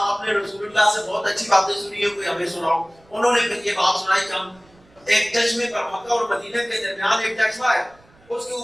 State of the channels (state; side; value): noise; right; rumble, 29 dB below the sound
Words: آپ نے رسول اللہ سے بہت اچھی باتیں سنی ہے، کوئی ہمیں سناؤ۔ انہوں نے پھر یہ بات سنائی کہ ہم ایک چشمے پر، مکہ اور مدینہ کے درمیان ایک چشمہ ہے، اس کے